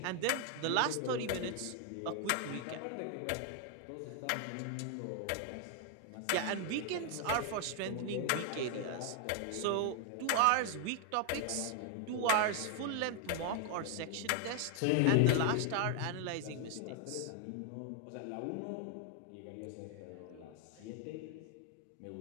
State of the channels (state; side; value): different; both; correlation 0.00